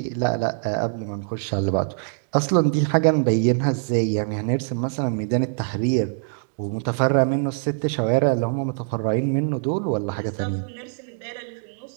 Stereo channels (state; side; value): silent; left; digital silence